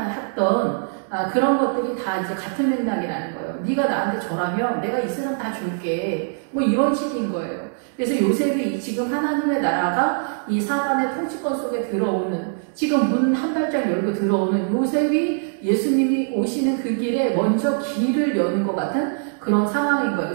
그런 것들이 다 이제 같은 맥락이라는 거예요. 네가 나한테 절하면 내가 이 사람 다 줄게, 이런 식인 거예요. 그래서 요셉이 지금 하나님의 나라가 이 사단의 통치권 속에 들어오는, 지금 문 한 발짝 열고 들어오는 요셉이 예수님이 오시는 그 길에 먼저 길을 여는 것 같은 그런 상황인 거예요.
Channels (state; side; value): silent; left; digital silence